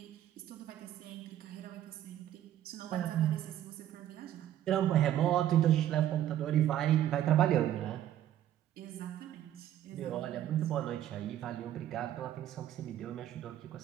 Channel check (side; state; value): left; quieter; 11.9 dB